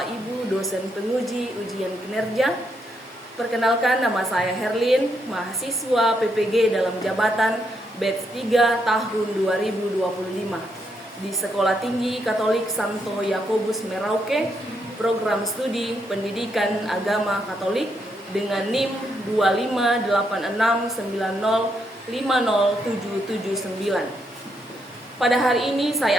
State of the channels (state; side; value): normal; both; correlation 0.79